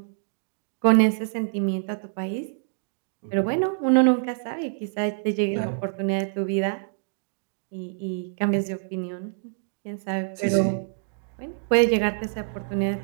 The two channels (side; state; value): left; silent; digital silence